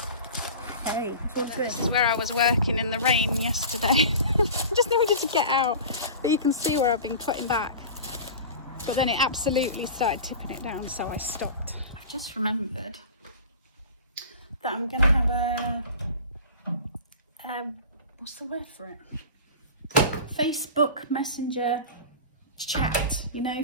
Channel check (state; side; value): inverted; both; correlation -0.35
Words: hey, all good. This is where I was working in the rain yesterday. Just needed to get out, but you can see where I've been cutting back. But then it absolutely started tipping it down, so I stopped. I just remembered that I'm going to have what's the word for it? Facebook Messenger chat, you know,